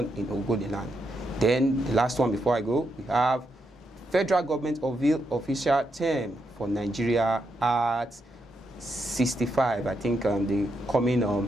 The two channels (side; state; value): both; normal; correlation 0.82